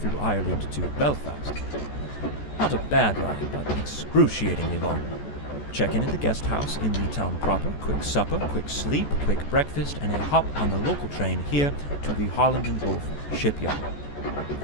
Ireland to Belfast. Not a bad ride, but excruciatingly long. Check-in at the guest house in the town proper, quick supper, quick sleep, quick breakfast, and a hop on the local train here to the Holland and Wolff shipyard.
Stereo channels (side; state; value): right; late; 14 ms